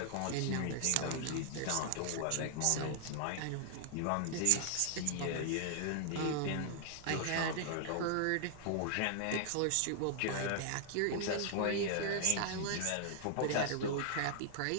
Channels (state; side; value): different; both; correlation -0.01